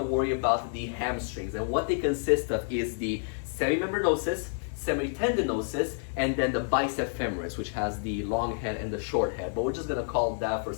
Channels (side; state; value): right; silent; 56 dB below the other